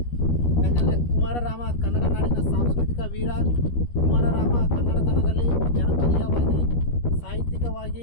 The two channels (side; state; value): right; late; 13 ms